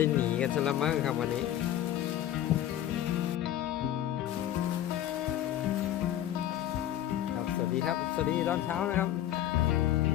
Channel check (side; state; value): right; quieter; 12.1 dB